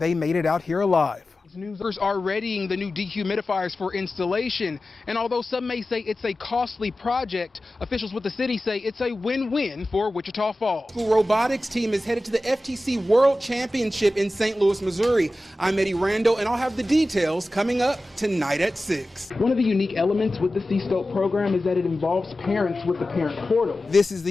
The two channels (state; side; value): normal; both; correlation 0.95